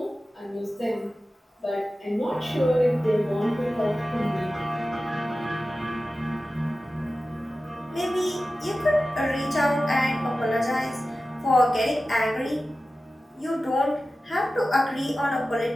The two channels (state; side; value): normal; both; correlation 0.95